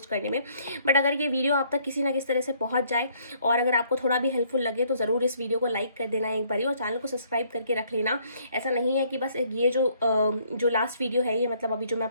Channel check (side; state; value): both; inverted; correlation -0.65